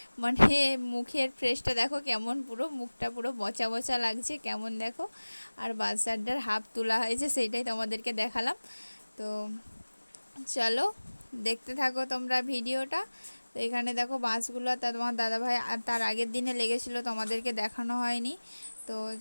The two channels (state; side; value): inverted; both; correlation -1.00